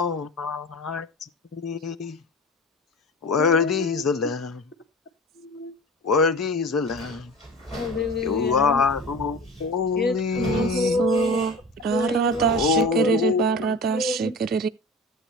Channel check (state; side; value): normal; both; correlation 0.34